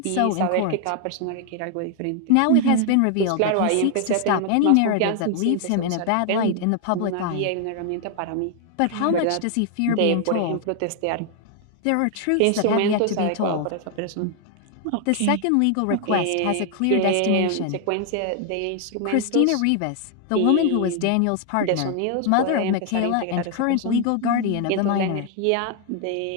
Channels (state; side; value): different; both; correlation 0.00